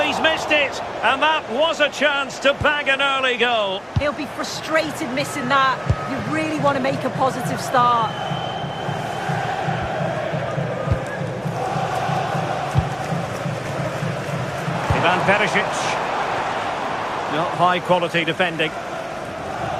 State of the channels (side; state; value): both; identical; correlation 1.00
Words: he's missed it. And that was a chance to bag an early goal. He'll be frustrated missing that. You really want to make a positive start. Ivan Perisic. Not high quality defending.